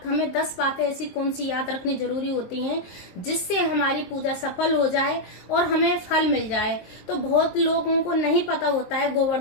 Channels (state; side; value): late; right; 23 ms